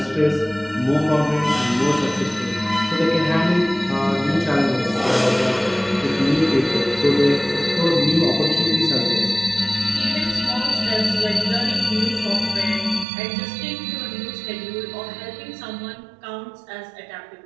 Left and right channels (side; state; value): left; drops out; at 13.1 s